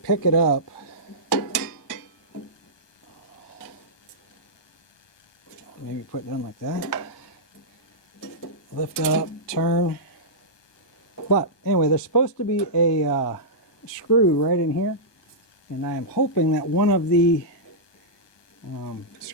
it up. Maybe put it down like that. Lift up, turn. But anyway, there's supposed to be a screw right in here, and I am hoping that one of the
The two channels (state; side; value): late; right; 1.2 ms